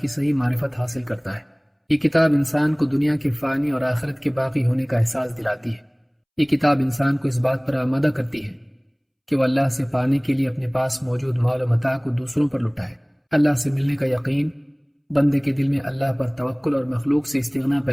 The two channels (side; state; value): both; identical; correlation 1.00